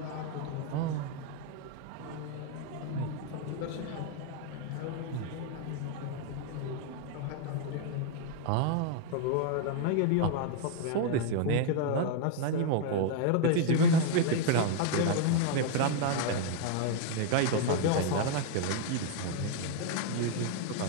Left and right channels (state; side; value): different; both; correlation 0.00